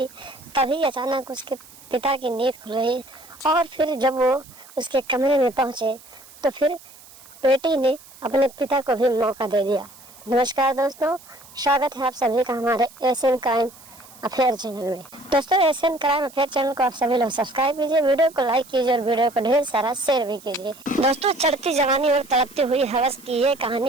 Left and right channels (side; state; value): right; noise; hiss, 22 dB below the sound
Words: तभी अचानक उसके पिता की नींद खुल गई और फिर जब वो उसके कमरे में पहुंचे तो फिर बेटी ने अपने पिता को भी मौका दे दिया। नमस्कार दोस्तों, स्वागत है आप सभी का हमारे एशियन क्राइम अफेयर चैनल में। दोस्तों, एशियन क्राइम अफेयर चैनल को आप सभी लोग सब्सक्राइब कीजिए, वीडियो को लाइक कीजिए और वीडियो को ढेर सारा शेयर भी कीजिए। दोस्तों, चढ़ती जवानी और तड़पती हुई हवस की ये